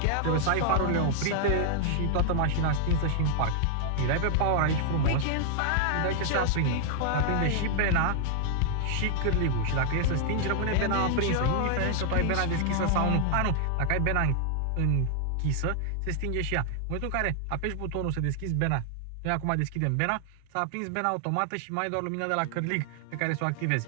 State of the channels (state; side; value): different; both; correlation -0.01